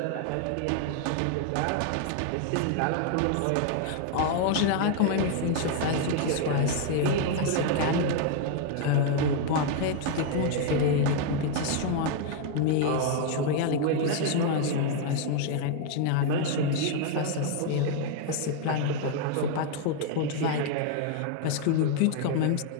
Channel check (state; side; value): different; both; correlation 0.00